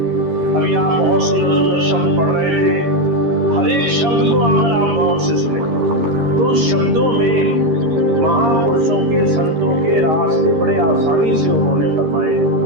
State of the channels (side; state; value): left; late; 13 ms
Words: अभी आप बहुत सुंदर सुंदर शब्द पढ़ रहे थे, हर एक शब्द को अगर आप गौर से सुने तो शब्दों में महापुरुषों के संतों के रास्ते बड़े आसानी से उन्होंने फरमाए,